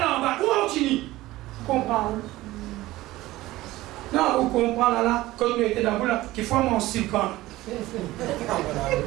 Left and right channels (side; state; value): left; quieter; 17.5 dB